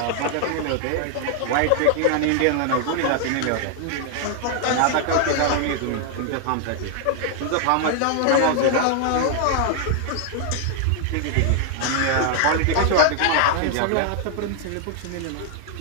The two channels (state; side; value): different; both; correlation 0.00